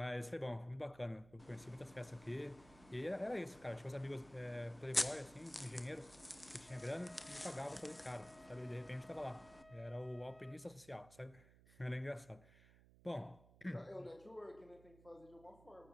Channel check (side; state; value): right; noise; hum, 22 dB below the sound